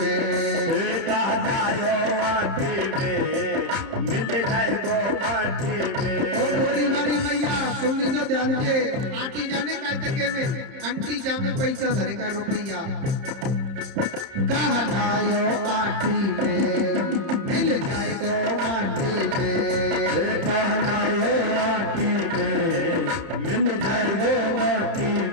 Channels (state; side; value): late; left; 31 ms